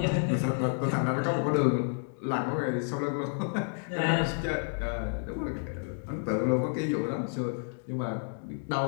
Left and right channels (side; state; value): right; silent; digital silence